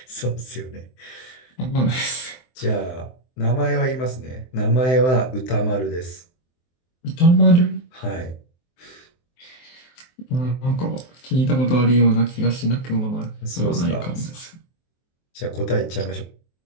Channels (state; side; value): late; right; 23 ms